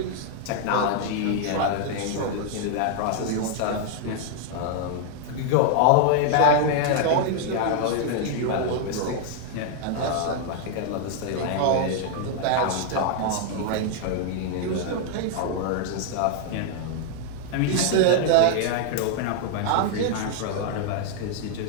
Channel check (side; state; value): both; different; correlation 0.00